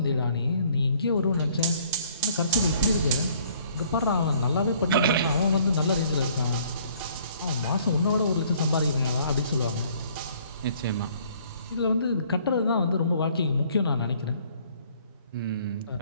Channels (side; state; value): both; inverted; correlation -0.59